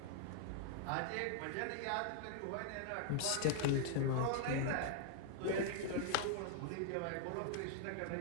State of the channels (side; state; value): both; different; correlation -0.01